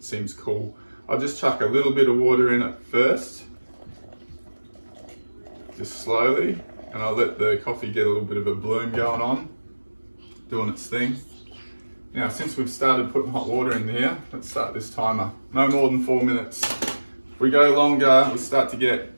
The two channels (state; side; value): inverted; both; correlation -1.00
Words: seems cool. I'll just chuck a little bit of water in it first, just slowly, and I'll let the coffee get a little bit of a bloom going on, doing its thing. Now, since we've started putting hot water in here, let's start this timer. No more than 4 minutes. If we go longer, we start to get